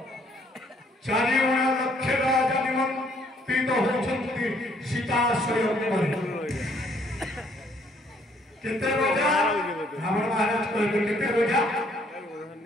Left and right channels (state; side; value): normal; both; correlation 0.65